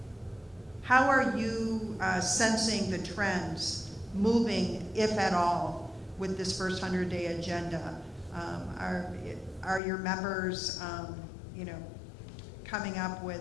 are you sensing the trends moving, if at all, with this first 100-day agenda? Are your members, coming up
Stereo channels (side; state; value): right; drops out; at 9.8 s